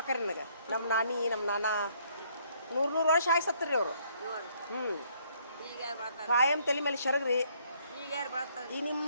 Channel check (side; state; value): both; inverted; correlation -0.66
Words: ನನಗೆ. ನಮ್ಮ ನಾನಿ ನಮ್ಮ ನಾನ 100 ವರ್ಷ ಆಗಿ ಸತ್ತರಿ ಅವರು. ಕಾಯಂ ತಲೆ ಮೇಲೆ ಶರಗ್ರಿ. ಈ ನಿಮ್ಮ